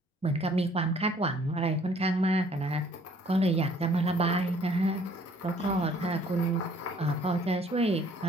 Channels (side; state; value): both; normal; correlation 0.59